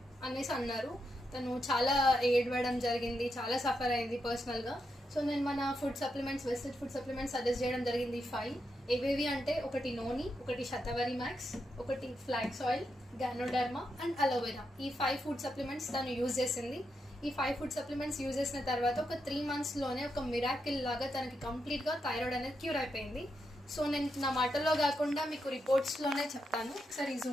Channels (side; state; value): both; normal; correlation 0.84